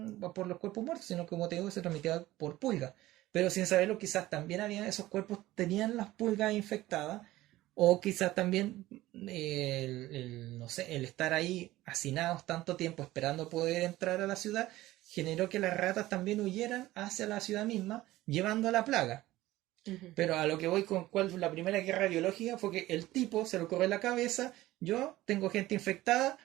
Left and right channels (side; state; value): left; quieter; 16.7 dB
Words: por los cuerpos muertos, sino que, como te digo, se transmitía por pulgas. Pero sin saberlo, quizás también había esos cuerpos tenían las pulgas infectadas, o quizás también no sé, el estar ahí hacinados tanto tiempo esperando poder entrar a la ciudad generó que las ratas también huyeran hacia la ciudad misma, llevando la plaga. Ujú. Pero a lo que voy con cuál fue la primera guerra biológica fue que el tipo se lo corre en la cabeza, yo tengo gente infectada,